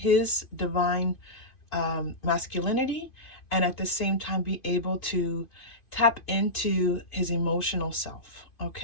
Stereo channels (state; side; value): late; right; 2.8 ms